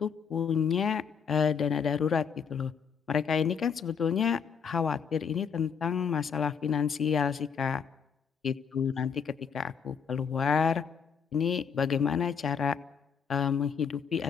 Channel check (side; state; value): right; quieter; 6.7 dB